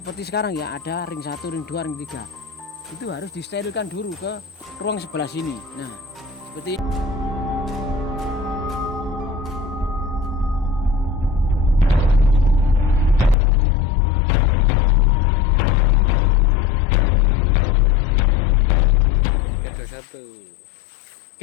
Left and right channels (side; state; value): right; drops out; at 13.4 s